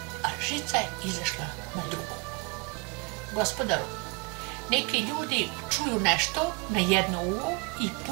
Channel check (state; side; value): quieter; left; 28.7 dB